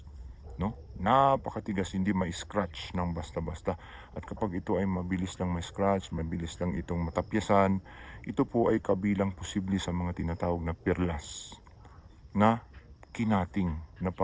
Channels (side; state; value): both; identical; correlation 1.00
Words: No? Napakatigas, hindi ma-scratch ng basta-basta. At kapag ito ay mabilis lang ma-scratch, mabilis lang itong matapyasan, ito po ay kabilang posible sa mga tinatawag na perlas na kinating, na